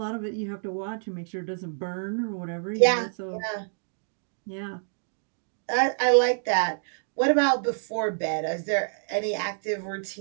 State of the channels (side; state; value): left; silent; digital silence